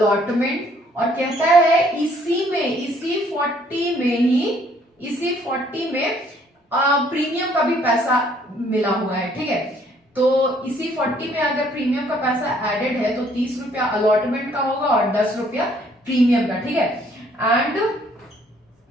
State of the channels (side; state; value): both; normal; correlation 0.63